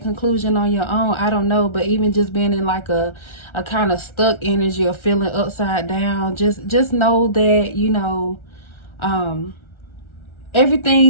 conclusion on your own. I don't know. But even just being in like a kind of stuck energy or feeling upside down, just know that, you know,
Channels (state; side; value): late; right; 1.3 ms